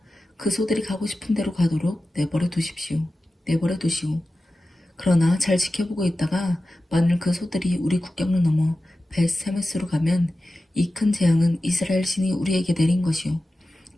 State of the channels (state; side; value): normal; both; correlation 0.94